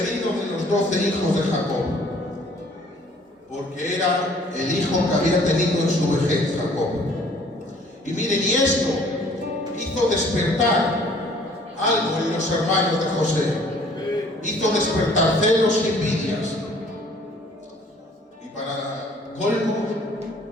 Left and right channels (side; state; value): both; normal; correlation 0.56